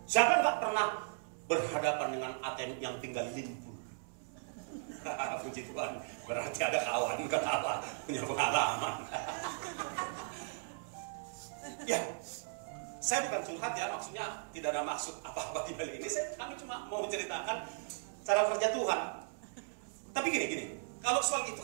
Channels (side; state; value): left; silent; 53 dB below the other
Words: Siapa yang gak pernah berhadapan dengan ATM yang tinggal limpul? Puji Tuhan, berarti ada kawan ketawa punya pengalaman. Ya, saya bukan curhat ya, maksudnya tidak ada maksud apa-apa di balik ini. Kami cuma mau ceritakan cara kerja Tuhan. Tapi gini, kalau soal itu